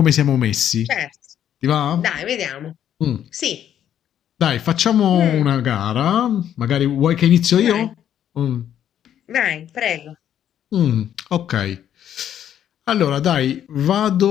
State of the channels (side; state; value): right; quieter; 10.2 dB